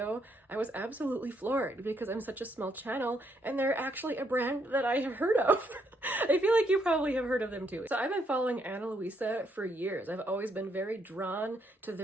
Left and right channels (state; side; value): normal; both; correlation 0.74